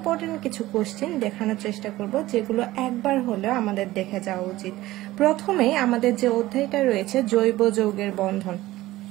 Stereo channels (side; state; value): left; quieter; 16.9 dB